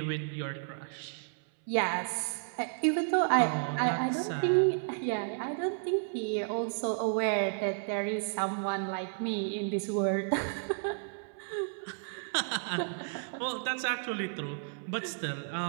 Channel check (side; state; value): left; silent; 56 dB below the other